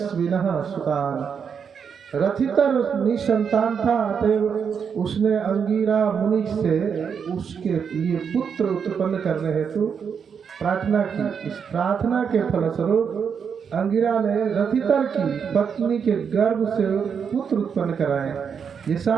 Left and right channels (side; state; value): left; quieter; 6.8 dB